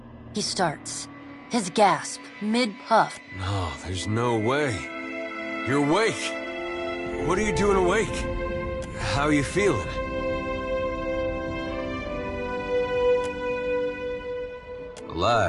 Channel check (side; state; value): both; identical; correlation 1.00